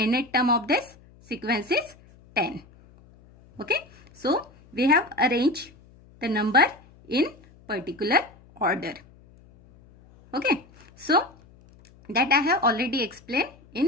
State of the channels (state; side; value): noise; left; hum, 26 dB below the sound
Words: term of this sequence is 10. Okay, so we have arranged the number in particular order. Okay, so that I have already explained